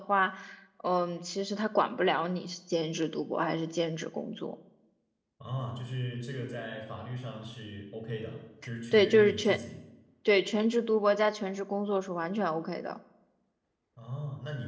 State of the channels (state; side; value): identical; both; correlation 1.00